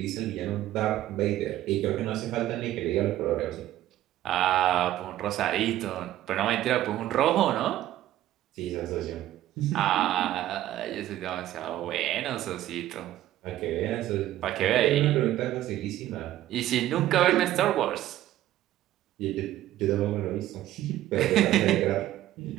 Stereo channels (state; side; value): quieter; left; 13.7 dB